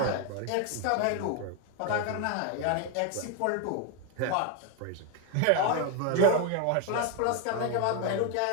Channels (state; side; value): different; both; correlation 0.01